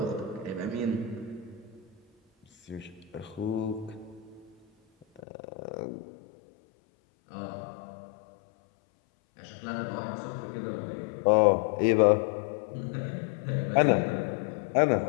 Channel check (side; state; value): right; drops out; at 5.2 s